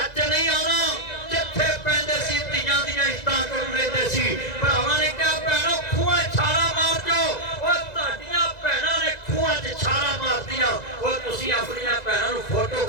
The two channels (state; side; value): late; right; 2.0 ms